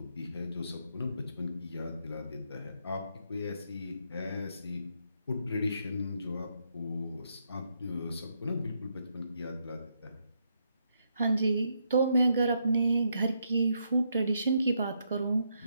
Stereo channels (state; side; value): inverted; both; correlation -0.77